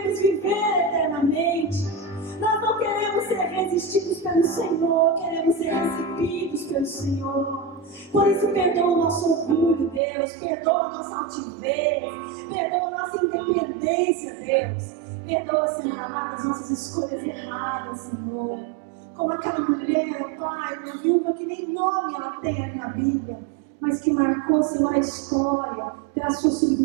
viver eternamente. Nós não queremos ser resistidos pelo Senhor, queremos ser recebidos pelo Senhor. Por isso, perdoa o nosso orgulho, Deus, perdoa a nossa altivez, perdoa a nossa independência, Deus. Perdoa, Senhor amado, as nossas escolhas erradas, Senhor. Como aquela mulher, Pai, uma viúva que nem nome ela tem ali na Bíblia, mas que marcou, Senhor, a história pela sua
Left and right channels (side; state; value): left; drops out; at 10.0 s